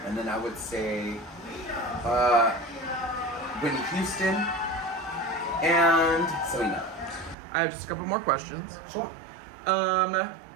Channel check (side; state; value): left; drops out; at 7.4 s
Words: And then I would say Whitney Houston and Selena. I have just a couple more questions. Sure.